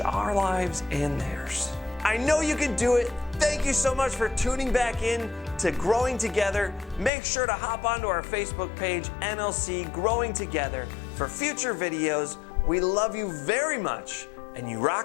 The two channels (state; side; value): drops out; right; at 7.1 s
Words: lives and theirs. I know you can do it. Thank you so much for tuning back in to Growing Together. Make sure to hop onto our Facebook page, NLC Growing Together, for future videos. We love you very much, and you